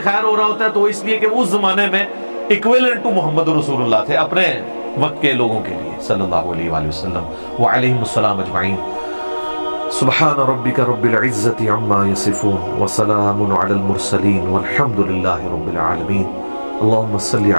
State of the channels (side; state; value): both; inverted; correlation -1.00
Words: خیر ہو رہا ہوتا ہے تو اس لیے کہ اس زمانے میں ایکویلنٹ ٹو محمد رسول اللہ تھے اپنے وقت کے لوگوں کے لیے صلی اللہ علیہ وآلہ وسلم وعلیہم السلام اجمعین. سبحان ربک رب العزت عما یصفون وسلام علی المرسلین والحمد للہ رب العالمین. اللہم صلی